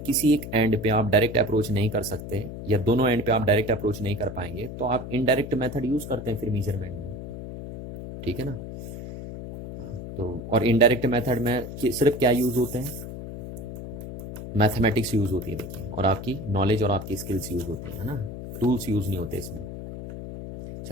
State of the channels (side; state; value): left; noise; hum, 9 dB below the sound